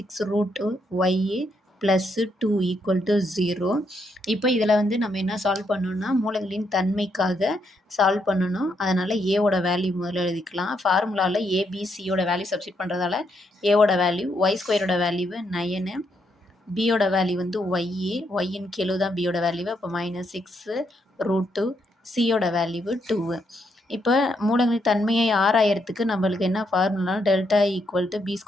+ 2 = 0. இப்போ இதில் வந்து நம்ம என்ன சால்வ் பண்ணணும்னா மூலங்களின் தன்மைக்காக சால்வ் பண்ணணும். அதனால் ஏவோட வேல்யூ முதல்ல எழுதிக்கலாம். ஃபார்முலாவில் ஏபிசியோட வேல்யூ சப்ஸ்டிட் பண்ணுறதால ஏவோட வேல்யூ y² வேல்யூ 9, பியோட வேல்யூ வந்து ஒய்யின் கெழு தான் பியோட வேல்யூ. அப்போ -6√2, சியோட வேல்யூ 2. இப்போ மூலங்களின் தன்மையை ஆராயறதுக்கு நம்மளுக்கு என்ன ஃபார்முலா டெல்டா = b² -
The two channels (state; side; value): normal; both; correlation 0.77